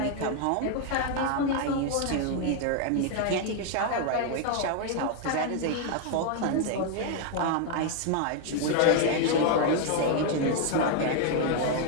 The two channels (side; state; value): both; different; correlation 0.00